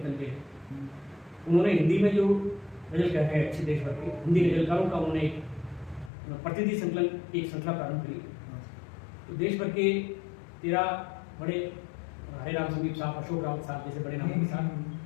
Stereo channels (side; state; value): right; drops out; at 6.1 s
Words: के हैं, उन्होंने हिंदी में जो गजल कहे हैं अच्छे देश भर के हिंदी गजलकारों का उन्होंने एक प्रतिनिधि संकलन की एक श्रृंखला प्रारंभ करी। तो देश भर के 13 बड़े हरे राम संदीप साहब, अशोक रावत साहब जैसे बड़े नामों के